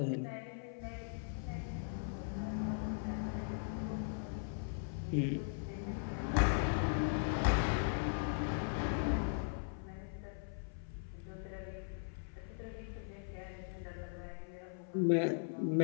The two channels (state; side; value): silent; right; 51 dB below the other